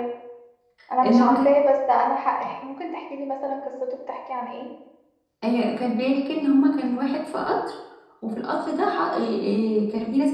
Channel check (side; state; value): both; identical; correlation 1.00